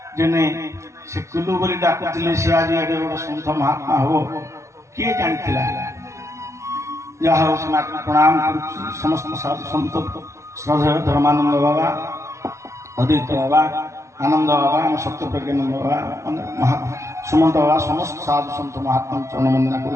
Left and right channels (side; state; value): left; late; 0.14 ms